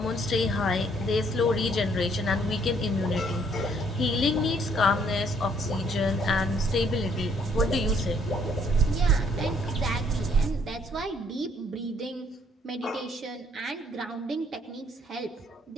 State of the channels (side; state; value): both; normal; correlation 0.65